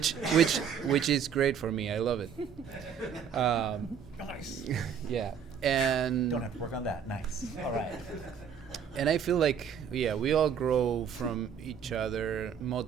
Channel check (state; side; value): quieter; left; 7.6 dB